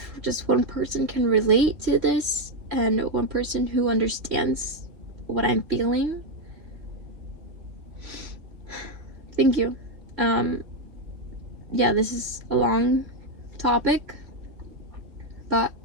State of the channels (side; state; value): left; late; 3.2 ms